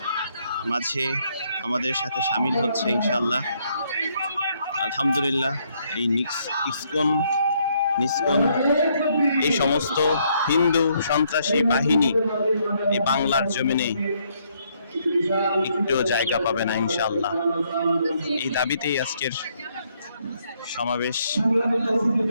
মাঝে আমাদের সাথে সামিল হচ্ছে ইনশাআল্লাহ, আলহামদুলিল্লাহ। এই ইসকন এই সমস্ত হিন্দু সন্ত্রাসী বাহিনী এই বাংলার জমিনে একটু জায়গা পাবে না ইনশাআল্লাহ। এই দাবিতেই আজকের সমাবেশ,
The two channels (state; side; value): inverted; both; correlation -0.71